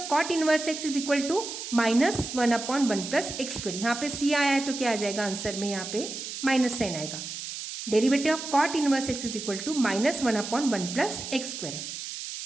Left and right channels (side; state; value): right; noise; hiss, 8 dB below the sound